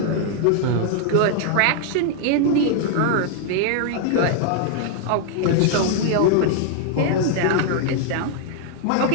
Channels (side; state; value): both; different; correlation 0.00